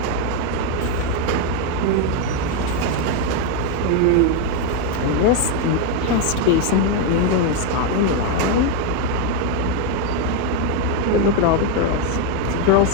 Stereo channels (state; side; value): different; both; correlation 0.01